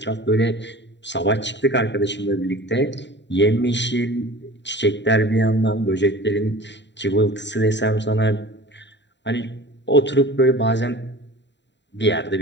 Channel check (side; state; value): right; late; 0.52 ms